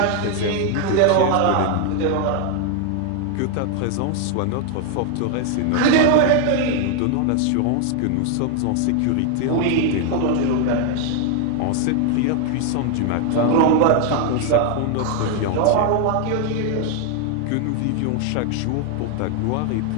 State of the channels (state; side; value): different; both; correlation 0.01